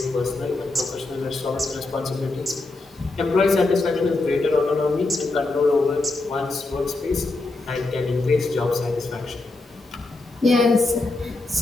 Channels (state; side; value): quieter; right; 3.2 dB